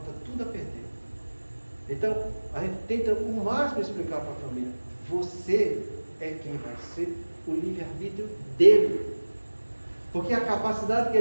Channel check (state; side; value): inverted; both; correlation -1.00